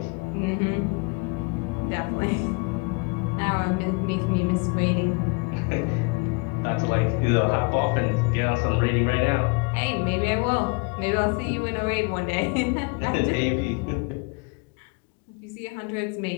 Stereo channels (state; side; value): quieter; right; 31.0 dB